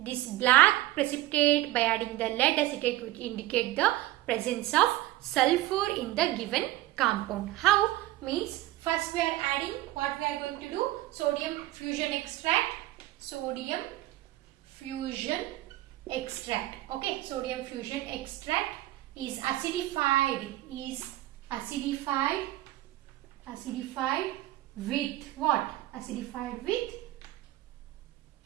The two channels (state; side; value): quieter; left; 16.2 dB